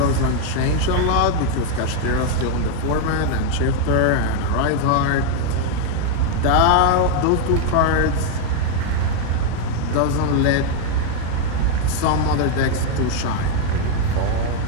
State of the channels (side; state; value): both; different; correlation 0.01